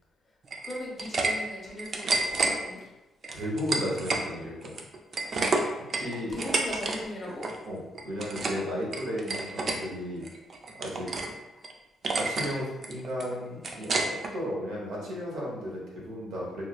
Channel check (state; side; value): normal; both; correlation 0.77